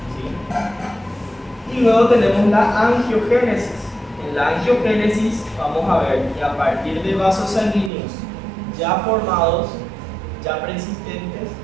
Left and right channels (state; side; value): drops out; left; at 7.9 s